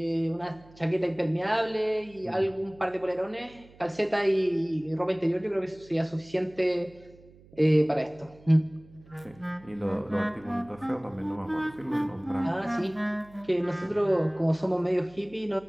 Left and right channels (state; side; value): noise; right; hum, 25 dB below the sound